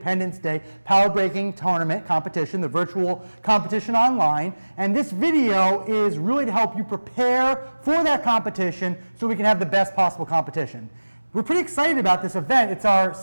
Day Power Breaking Tournament competition, the virtual competition online. And this video is really to help you prepare for that competition so we can have the best possible competition. We're pretty excited about this event. It's our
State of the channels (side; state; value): both; inverted; correlation -1.00